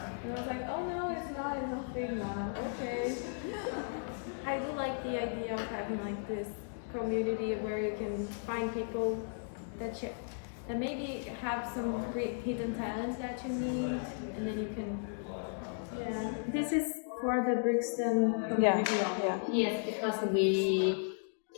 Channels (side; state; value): right; silent; digital silence